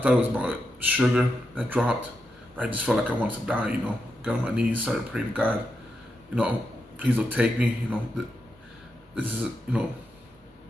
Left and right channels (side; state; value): both; normal; correlation 0.85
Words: it was about sugar that dropped. I just felt like I wanted to die, got on my knees, started praying to God, please don't take me, this is, I'm